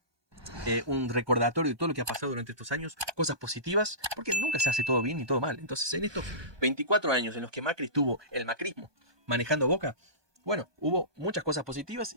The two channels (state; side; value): late; left; 1.2 ms